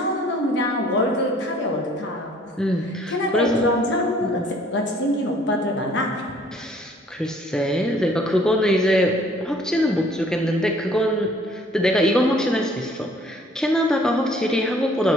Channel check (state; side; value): normal; both; correlation 0.57